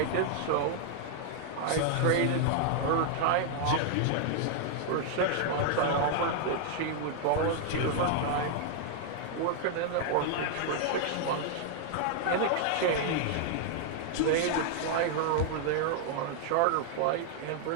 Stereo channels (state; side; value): different; both; correlation -0.01